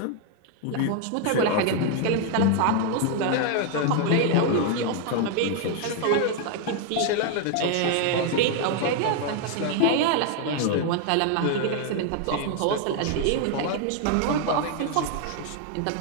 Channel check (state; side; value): different; both; correlation 0.00